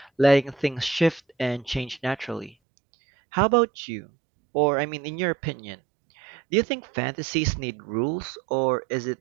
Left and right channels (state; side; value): drops out; left; at 2.6 s